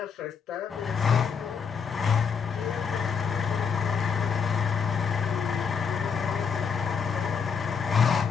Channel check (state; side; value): quieter; right; 6.3 dB